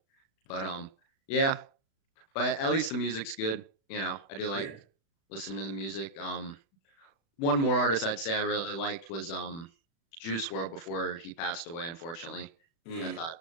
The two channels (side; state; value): right; late; 36 ms